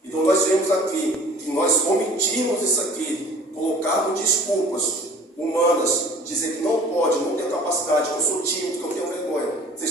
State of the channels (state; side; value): normal; both; correlation 0.49